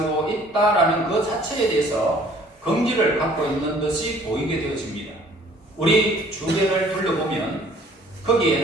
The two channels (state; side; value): normal; both; correlation 0.56